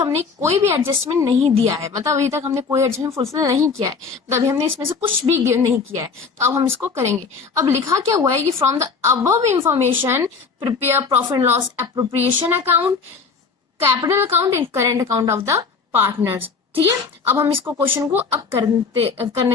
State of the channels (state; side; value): quieter; right; 5.2 dB